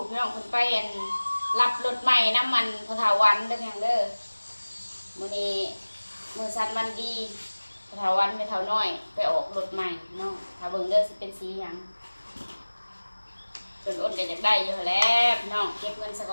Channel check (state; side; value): inverted; both; correlation -1.00